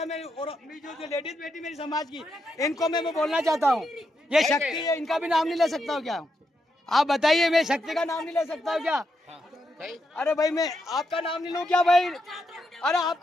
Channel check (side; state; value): both; normal; correlation 0.82